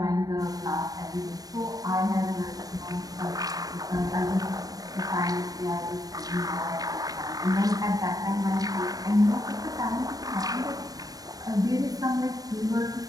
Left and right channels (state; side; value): late; left; 0.18 ms